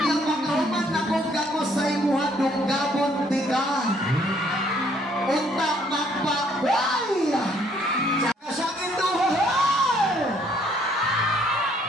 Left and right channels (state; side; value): normal; both; correlation 0.65